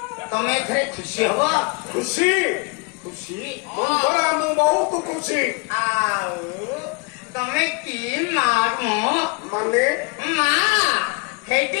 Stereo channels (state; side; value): quieter; right; 30.2 dB